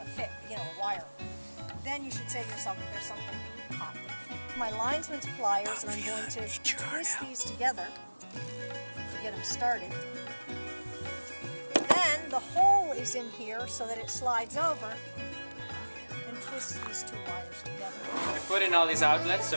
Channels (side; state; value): both; inverted; correlation -1.00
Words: wire, then you should say to yourself, there's something hot. My linesman's pliers, and I'm going to twist these together to get them started. Then the hole is in here so that it slides over, and twist these two wires together. I put in all these outlets,